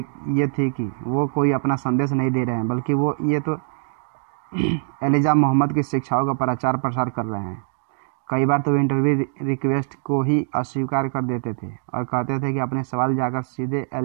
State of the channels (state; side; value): silent; left; digital silence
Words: थी कि वो कोई अपना संदेश नहीं दे रहे हैं, बल्कि वो ये तो एलिजा मोहम्मद की शिक्षाओं का प्रचार प्रसार कर रहे हैं। कई बार तो वे इंटरव्यू रिक्वेस्ट को ही अस्वीकार कर देते थे और कहते थे कि अपने सवाल जाकर सीधे